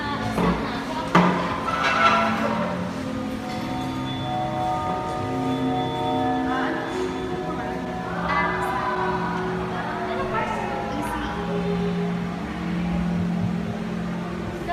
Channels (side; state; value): both; identical; correlation 1.00